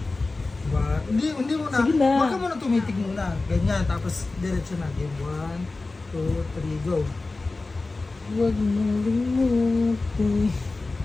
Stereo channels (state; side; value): quieter; right; 3.5 dB